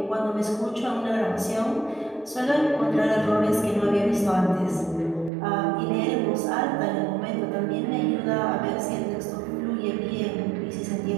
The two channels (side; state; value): left; drops out; at 5.3 s